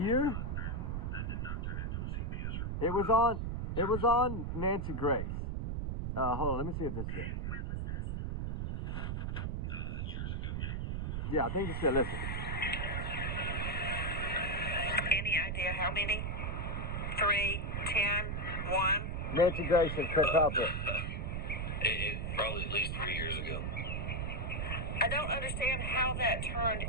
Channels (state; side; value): noise; right; rumble, 2 dB below the sound